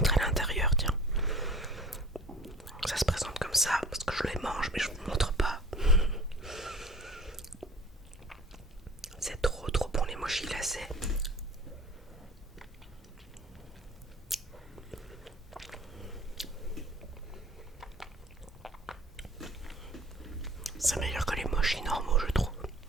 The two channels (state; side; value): normal; both; correlation 0.47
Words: l'intérieur, tiens. Ça se présente comme ça, parce que je les mange, mais je vous montre pas. C'est trop bon les mochis glacés. C'est meilleur que les mochis normaux, je trouve.